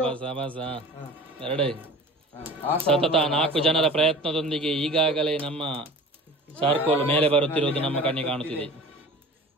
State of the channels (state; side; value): normal; both; correlation 0.39